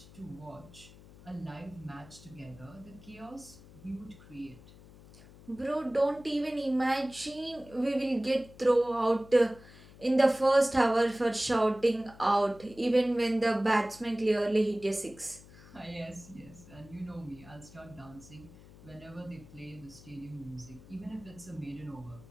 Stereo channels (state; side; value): noise; left; hum, 21 dB below the sound